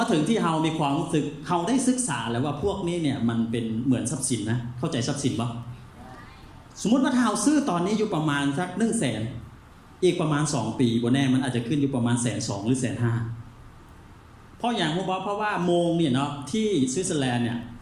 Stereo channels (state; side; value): identical; both; correlation 1.00